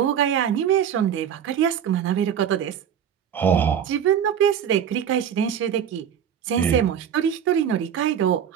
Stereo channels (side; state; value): left; quieter; 8.8 dB